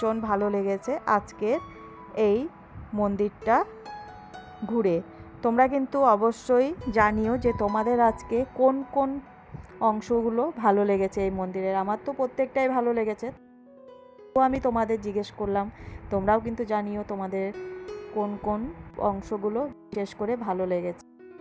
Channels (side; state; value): both; identical; correlation 1.00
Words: ভালো লেগেছে আজকের এই মন্দিরটা ঘুরে। তোমরা কিন্তু অবশ্যই জানিও যে তোমাদের আজকে কোন কোন অংশগুলো ভালো লেগেছে এই মন্দিরের। আমার তো প্রত্যেকটাই ভালো লেগেছে, তো আমি তোমাদের জিজ্ঞেস করলাম। তোমরাও কিন্তু জানিও তোমাদের কোন কোন অংশগুলো বিশেষ করে ভালো লেগেছে।